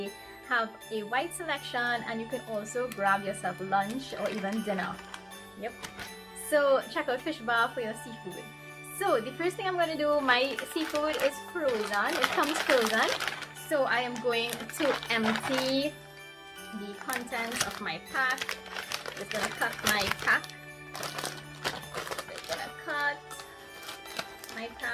have a wide selection and you can also grab yourself lunch or even dinner. Yep. So check out Fishbar for your seafood. So the first thing I'm going to do, my seafood is frozen. It comes frozen. So I am going to empty the contents of my pack. Just going to cut my pack. Just going to cut my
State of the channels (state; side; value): identical; both; correlation 1.00